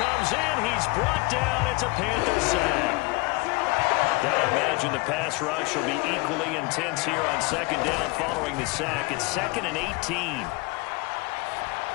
in. He's brought down. It's a Panther sack. Gotta imagine the pass rush will be equally intense here on second down following the sack. It's 2nd and 18.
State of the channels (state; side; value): quieter; right; 24.9 dB